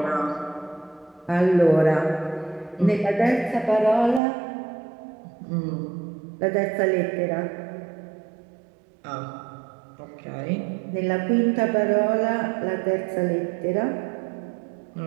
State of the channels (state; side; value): drops out; left; at 4.2 s